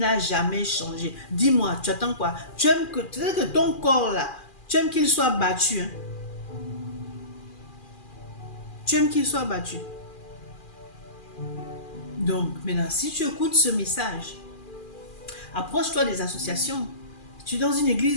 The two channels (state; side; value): late; right; 2.4 ms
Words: jamais changé. Dis-moi, tu attends quoi? Tu aimes que ton corps là, tu aimes qu'il soit battu. Hein? Tu aimes qu'il soit battu. Donc, maintenant, si tu écoutes ce message, approche-toi des associations. Tu es dans une